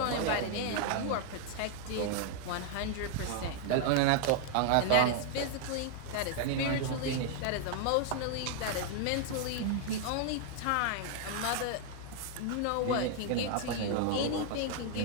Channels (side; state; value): both; different; correlation 0.00